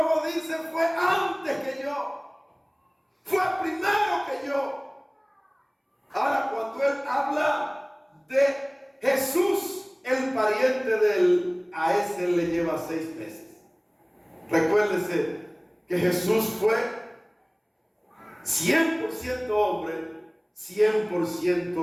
dice: fue antes que yo, fue primero que yo. Ahora, cuando él habla de Jesús, el pariente de él, a ese le lleva 6 meses. Recuérdese que Jesús fue 100% hombre,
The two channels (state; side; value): identical; both; correlation 1.00